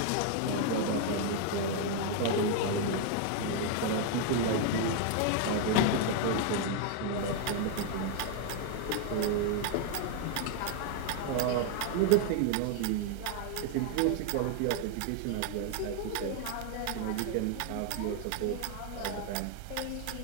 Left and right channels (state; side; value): different; both; correlation 0.01